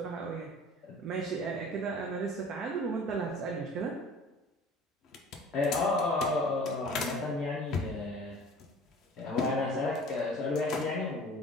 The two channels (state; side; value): normal; both; correlation 0.45